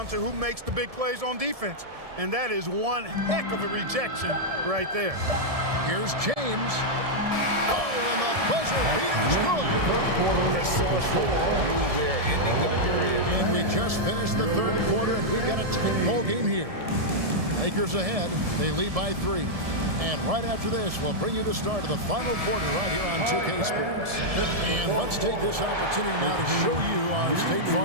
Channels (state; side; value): late; left; 1.7 ms